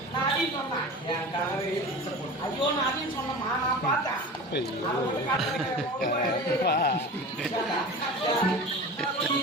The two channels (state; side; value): normal; both; correlation 0.33